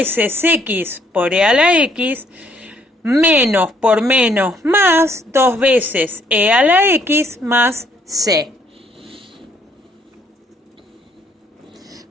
x por e a la x menos por menos más 2 veces e a la x más c.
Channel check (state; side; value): normal; both; correlation 0.67